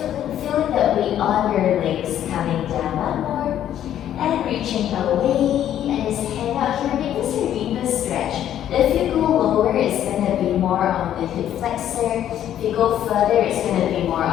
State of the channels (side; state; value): right; quieter; 10.9 dB